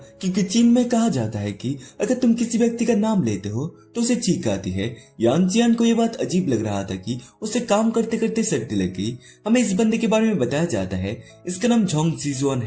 क्योंकि चीन में कहा जाता है कि अगर तुम किसी व्यक्ति का नाम लेते हो तो उसे चीख आती है। यान जियान को यह बात अजीब लग रहा था कि उसे काम करते करते सर्दी लग गई। हमें इस बंदे के बारे में बताया जाता है, इसका नाम जोंग जिजुआन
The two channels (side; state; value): both; identical; correlation 1.00